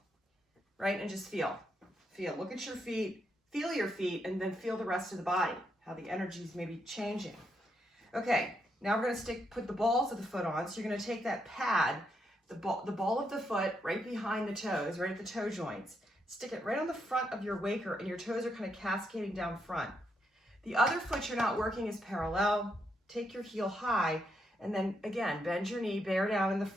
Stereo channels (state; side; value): normal; both; correlation 0.79